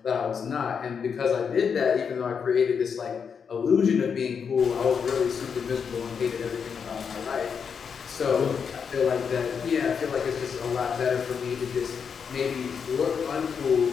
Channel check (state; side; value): quieter; right; 6.5 dB